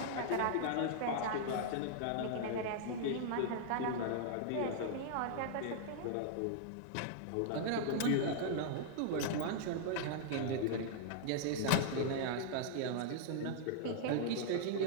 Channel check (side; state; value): both; different; correlation -0.01